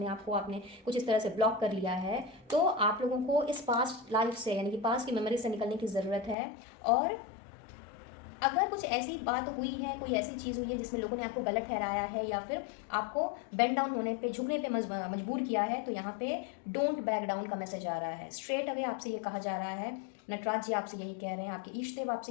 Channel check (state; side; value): drops out; right; at 6.4 s